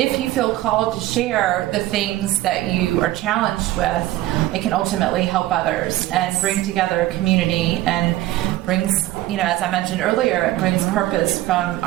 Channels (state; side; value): quieter; left; 16.0 dB